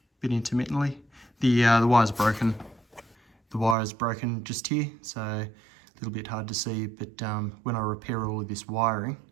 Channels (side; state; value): left; drops out; at 3.8 s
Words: A bit intermittently. The wire's broken. The wire is broken just here, so a little bit hard to see, but when I repair all of this wiring,